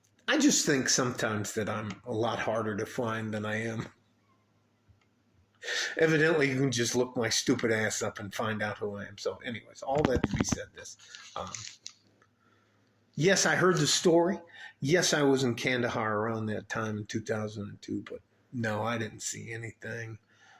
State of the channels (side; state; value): both; identical; correlation 1.00